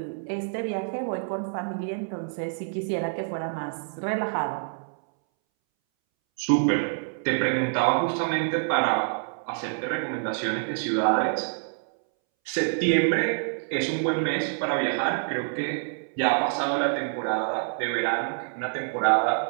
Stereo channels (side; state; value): left; silent; 60 dB below the other